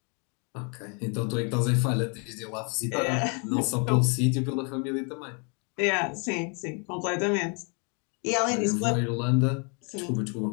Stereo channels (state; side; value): quieter; right; 36.2 dB